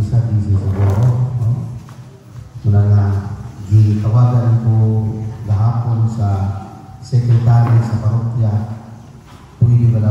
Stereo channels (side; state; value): both; identical; correlation 1.00